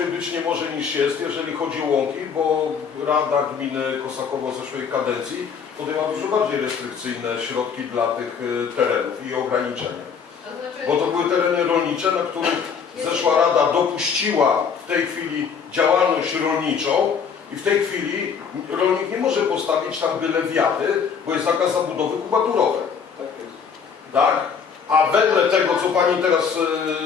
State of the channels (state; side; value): quieter; right; 6.5 dB